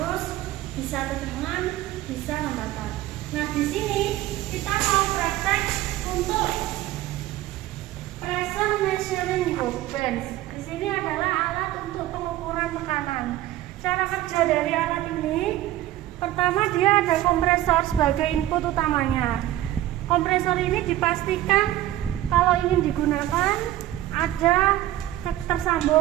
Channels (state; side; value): quieter; left; 14.5 dB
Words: bisa tegangan, bisa hambatan. Nah, di sini kita mau praktek untuk pressure measuring hose. Di sini adalah alat untuk pengukuran tekanan. Cara kerja dari alat ini, pertama dia ada kompresor sebagai input utamanya. Kompresor ini dipastikan kalau ingin digunakan ada